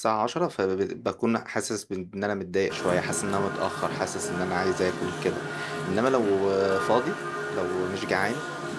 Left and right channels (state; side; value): identical; both; correlation 1.00